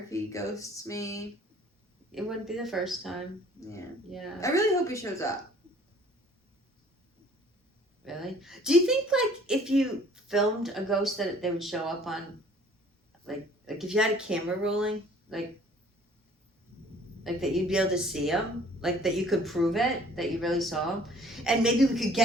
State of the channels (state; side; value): normal; both; correlation 0.54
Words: he ghosts me. It wouldn't be the first time. Yeah. Yeah. I really hope he shows up. Really? Do you think, like, if you filmed a ghost that they would show up on, like if you had a camera rolling, like that you'd be able to see him? Like, that you could prove it, that you really saw him? And maybe we could